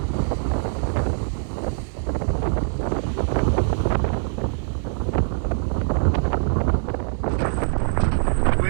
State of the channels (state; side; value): silent; left; digital silence